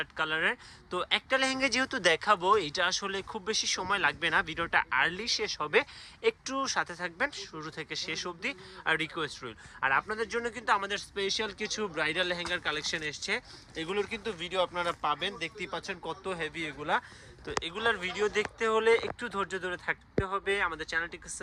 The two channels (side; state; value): both; identical; correlation 1.00